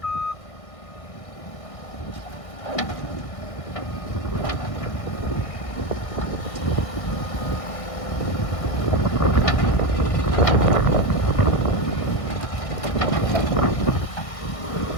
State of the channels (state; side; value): late; right; 1.6 ms